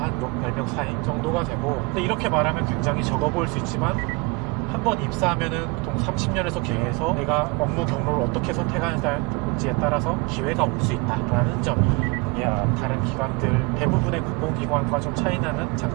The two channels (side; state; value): left; quieter; 28.2 dB